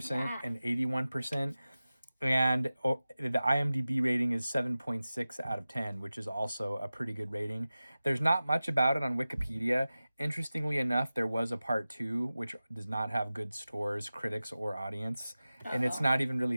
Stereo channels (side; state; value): both; inverted; correlation -0.96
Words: and 81%. And the IMDb rating is 7.6 out of 10, which is also a pretty good rating. There's not much about it on Wikipedia. Interestingly enough, there was a part 2, which does not have good scores, critics, or audience. And it's not even